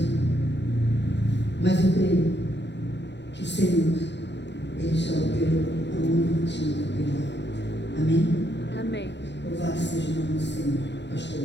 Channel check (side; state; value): right; late; 0.51 ms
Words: Mas eu creio que o Senhor, ele já operou aonde tinha que operar. Amém? Amém. Louvado seja o nome do Senhor,